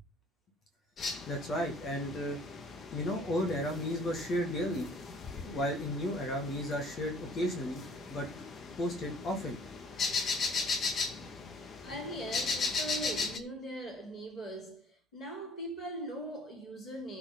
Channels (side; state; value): both; normal; correlation 0.55